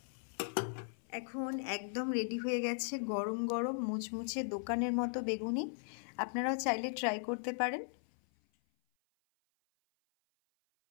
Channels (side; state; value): right; silent; 53 dB below the other